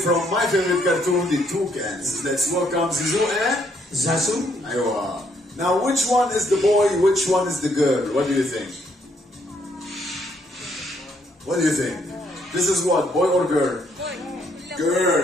my favorite cartoon, the Toucans. Let's welcome Zizou and Zazu. Aywa. Now, which one is the boy, which one is the girl? What do you think? What do you think? This is what, boy or girl?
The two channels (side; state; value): both; normal; correlation 0.71